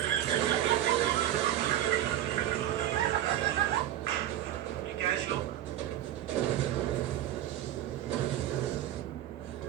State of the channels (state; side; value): quieter; left; 12.2 dB